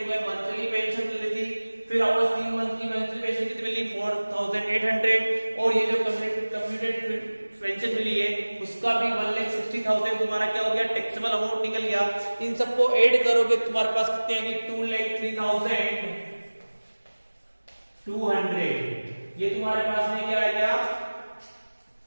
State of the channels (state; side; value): inverted; both; correlation -1.00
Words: मंथली पेंशन मिल रही थी, फिर वापस 3 मंथ की मंथली पेंशन कितनी मिली 4,800, और ये जो कम्प्यूटेड पेंशन मिली है उसका भी 1,60,000 तुम्हारा क्या हो गया, टैक्सेबल अमाउंट निकल गया। इन सबको ऐड करोगे तुम्हारे पास कितने आएंगे 2,03,200। ये तुम्हारे पास में क्या आ गया,